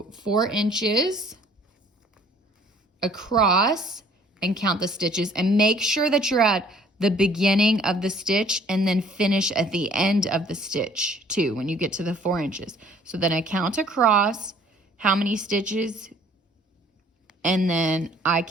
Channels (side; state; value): both; normal; correlation 0.56